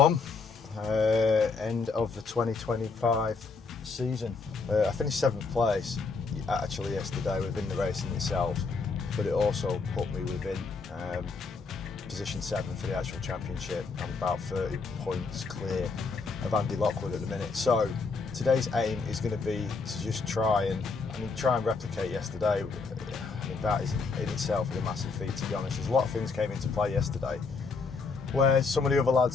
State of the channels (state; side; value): quieter; right; 4.4 dB